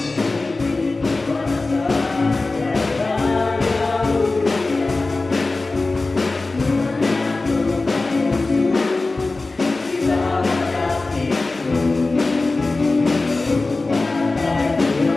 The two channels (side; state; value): right; quieter; 3.4 dB